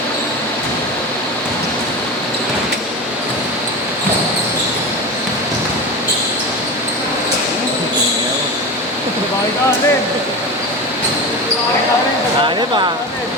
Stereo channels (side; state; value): both; normal; correlation 0.26